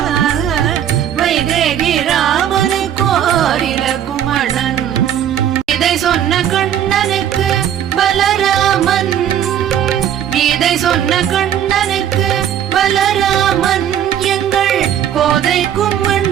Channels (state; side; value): quieter; left; 10.0 dB